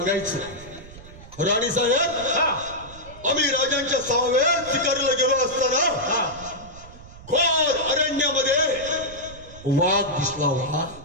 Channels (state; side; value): noise; right; rumble, 18 dB below the sound